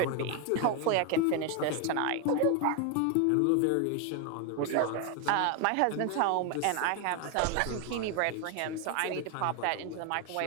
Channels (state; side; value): different; both; correlation 0.01